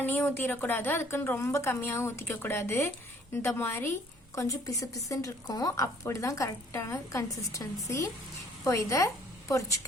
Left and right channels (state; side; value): normal; both; correlation 0.58